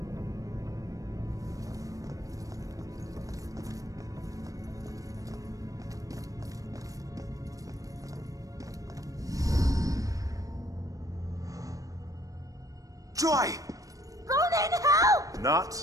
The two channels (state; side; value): late; left; 0.16 ms